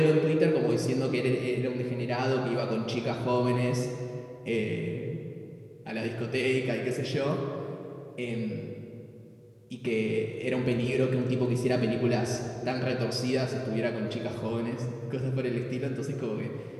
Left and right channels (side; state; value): both; identical; correlation 1.00